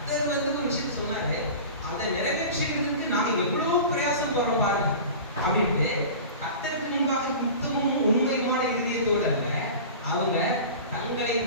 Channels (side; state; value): both; inverted; correlation -0.36